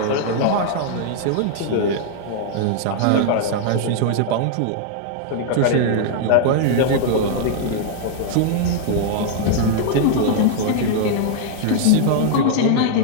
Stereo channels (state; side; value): different; both; correlation -0.01